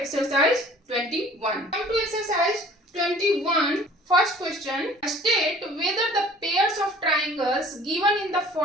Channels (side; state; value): both; normal; correlation 0.50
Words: 21. Come to exercise 21. First question. State whether the pairs of triangles given in the